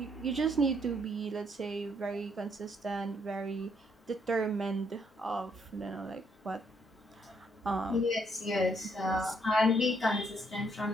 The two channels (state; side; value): normal; both; correlation 0.71